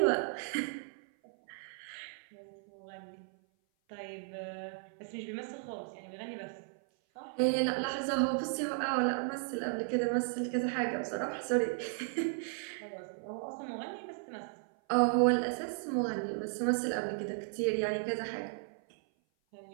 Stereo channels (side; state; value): left; silent; 54 dB below the other